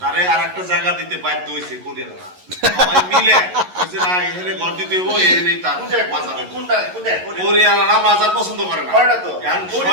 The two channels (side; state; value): left; late; 11 ms